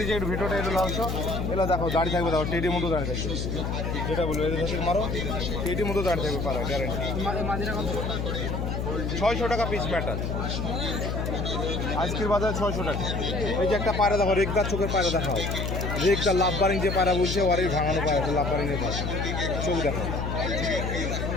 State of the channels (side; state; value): left; noise; hum, 2 dB below the sound